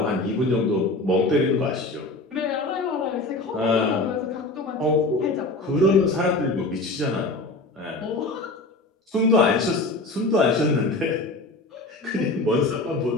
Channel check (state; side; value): quieter; right; 3.0 dB